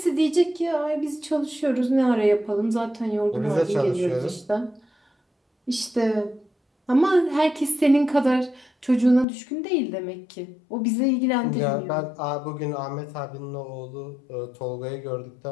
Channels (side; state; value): right; drops out; at 9.2 s